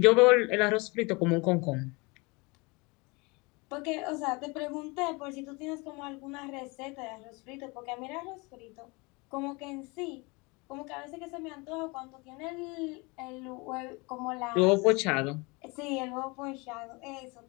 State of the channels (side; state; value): right; quieter; 27.1 dB